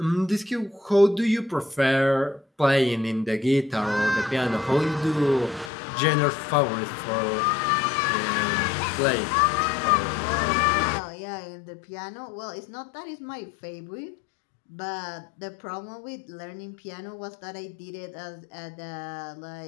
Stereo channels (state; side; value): drops out; right; at 5.7 s